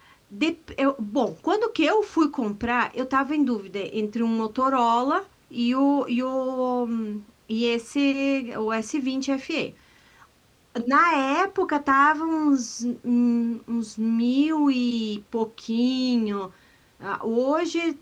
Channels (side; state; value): both; identical; correlation 1.00